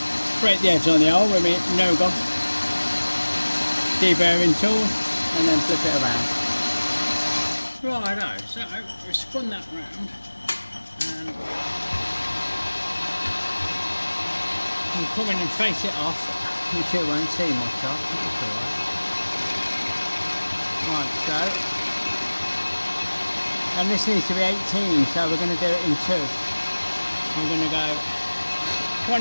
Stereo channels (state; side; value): inverted; both; correlation -1.00